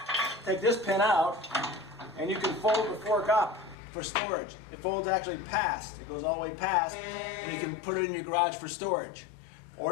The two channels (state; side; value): drops out; right; at 3.8 s